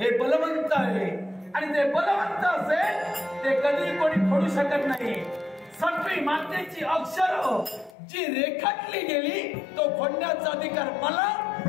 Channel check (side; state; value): right; drops out; at 8.0 s